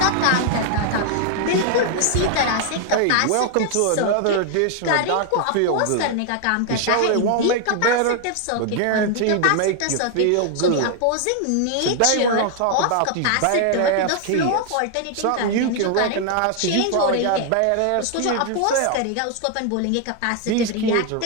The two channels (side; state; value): both; different; correlation 0.00